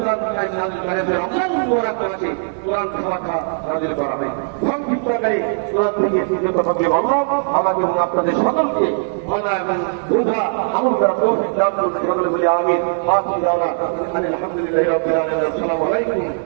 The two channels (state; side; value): silent; left; 66 dB below the other